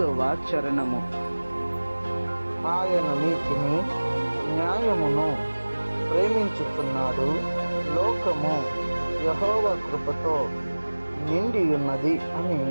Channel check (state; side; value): inverted; both; correlation -1.00